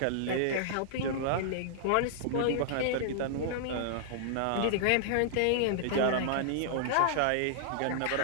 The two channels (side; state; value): both; different; correlation -0.01